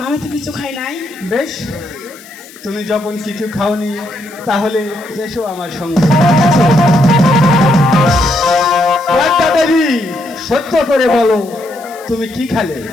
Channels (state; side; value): noise; left; hiss, 22 dB below the sound